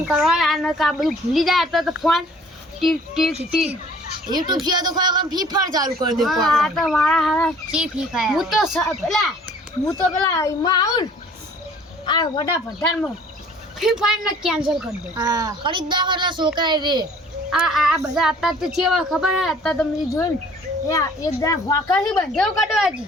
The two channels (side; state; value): both; normal; correlation 0.53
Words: કરવા અને કા બધું ભૂલી જાય તો ફોન ટીક યુટ્યુબ છે તો ખરેખર ફ્રી ફાયર ચાલુ કરી દે આ તો મારા હારા ચી ફ્રી ફાયર હું તો પેલા એમાં આવું આ વડા ભંડારમાં ફ્રી ફાયર ને કેન્સલ કરી દે હા ખરીદદાર એટલે છોકરા રે આ બધા અત્યારે તો ચેવા ખબર હે અત્યારે તમે જોયું ને એક જણા વાંકાથી બંધેવ કાઢવા હતી